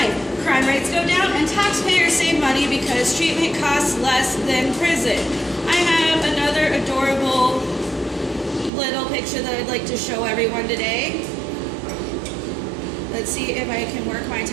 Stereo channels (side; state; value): left; drops out; at 8.7 s